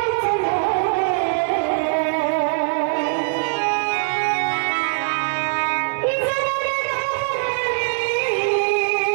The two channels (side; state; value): left; silent; digital silence